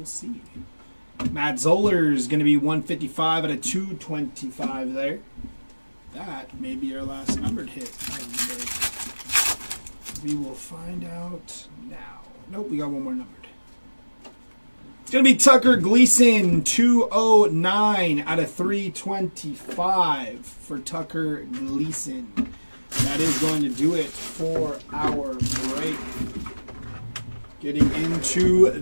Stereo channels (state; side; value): inverted; both; correlation -1.00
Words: see. Matt Zoller is going to be 155 out of 225 there. That may be our last numbered hit of the break. We will find out now. Nope, we got one more numbered. It's going to be Tucker Gleason, 209 out of 325 for Tucker Gleason. That is going to do it for our break. Getting into